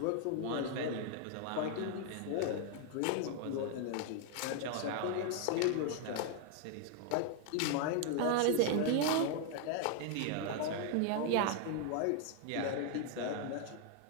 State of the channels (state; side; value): different; both; correlation 0.00